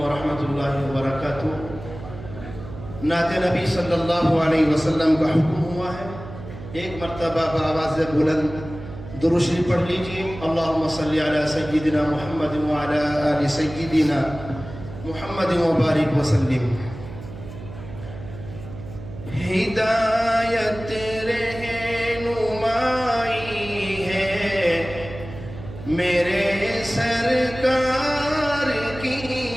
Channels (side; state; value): right; noise; hum, 13 dB below the sound